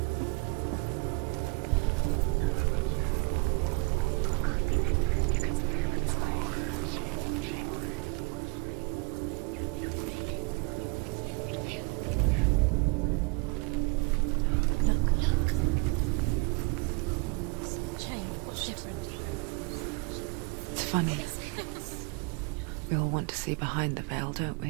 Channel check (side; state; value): left; quieter; 29.8 dB